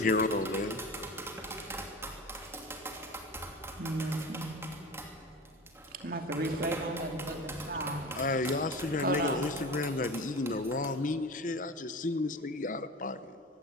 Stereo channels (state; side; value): normal; both; correlation 0.33